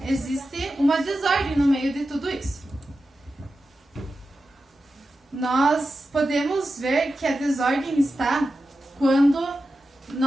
existe uma desordem no meio de tudo isso. Nós podemos ver que a desordem está quando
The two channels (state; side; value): normal; both; correlation 0.92